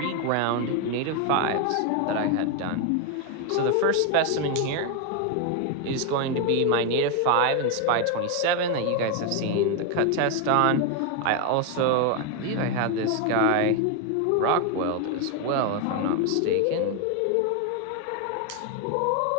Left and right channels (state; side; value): different; both; correlation 0.01